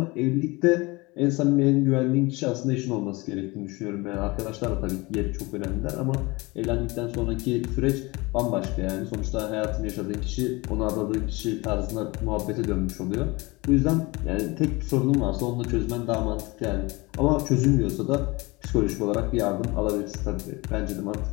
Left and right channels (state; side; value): quieter; right; 24.0 dB